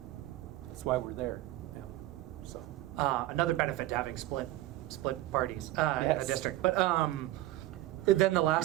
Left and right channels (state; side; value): quieter; left; 16.2 dB